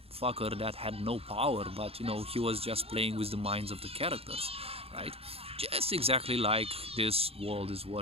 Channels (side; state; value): left; late; 0.28 ms